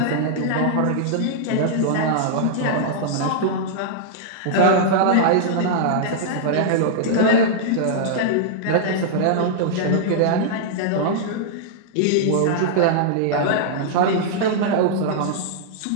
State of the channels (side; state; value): both; different; correlation -0.01